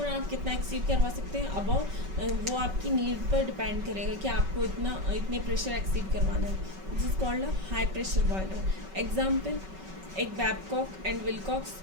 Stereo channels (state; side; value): late; left; 5.3 ms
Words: आप कितना एक्सीड करवा सकते हैं अबव, वो आपकी नीड पर डिपेंड करेगा कि आपको इतने प्रेशर एक्सीड करवाना है, this is called a high pressure boiler. Example, एक बैबकॉक एंड विलकॉक्स,